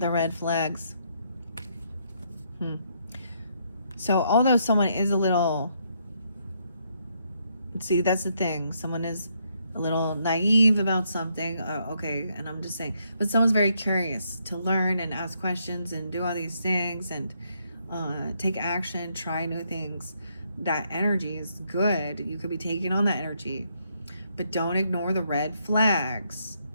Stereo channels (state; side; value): inverted; both; correlation -0.74